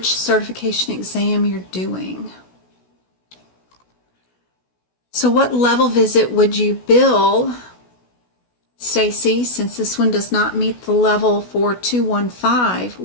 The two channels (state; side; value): late; right; 16 ms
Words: certification exam you're doing. So what level visit would you bill, Stacy, since this one does not meet the level for 215?